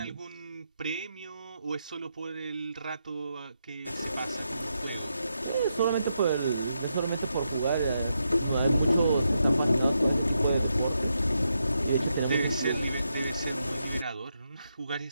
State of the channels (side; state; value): both; inverted; correlation -0.83